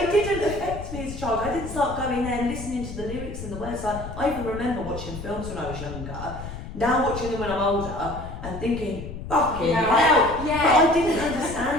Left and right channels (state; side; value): noise; left; rumble, 10 dB below the sound